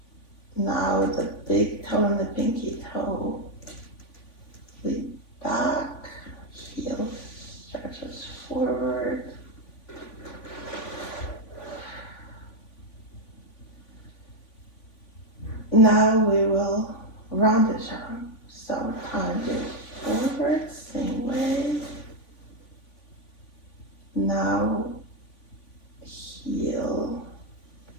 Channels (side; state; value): right; late; 3.5 ms